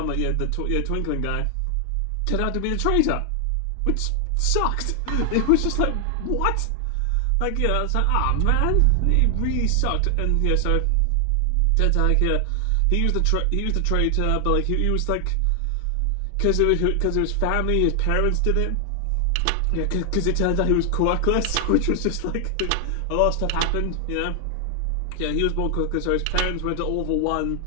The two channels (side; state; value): both; different; correlation 0.00